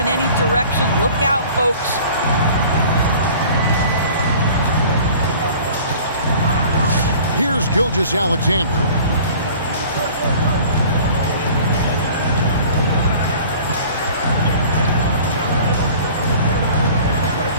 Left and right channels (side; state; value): both; inverted; correlation -0.46